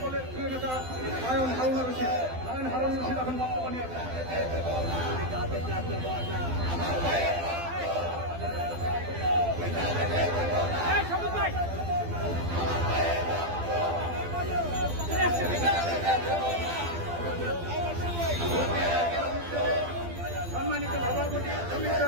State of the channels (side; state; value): left; late; 12 ms